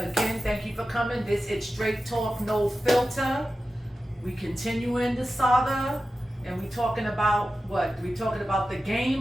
thank you for coming. This is Straight Talk, No Filter. We continuing the saga, and we talking about what? We talking about the game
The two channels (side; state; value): both; normal; correlation 0.93